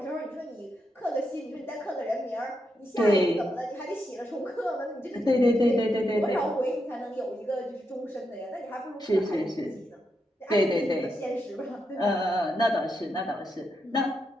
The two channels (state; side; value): normal; both; correlation 0.83